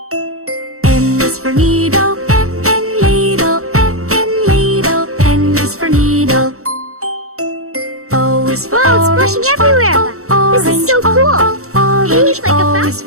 N is for needle, N, N, needle, N, N, needle. N is for needle. O is for Wow, it's orange, splashing everywhere. orange, This is so cool. orange. Hey, like a O fountain. is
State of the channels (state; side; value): late; left; 0.64 ms